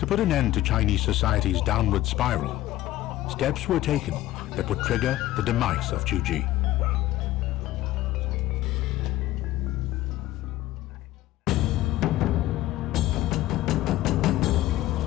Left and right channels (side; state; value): right; quieter; 15.5 dB